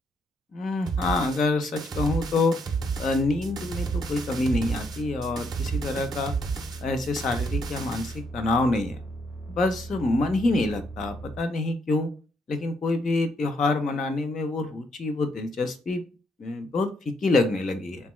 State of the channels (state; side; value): normal; both; correlation 0.74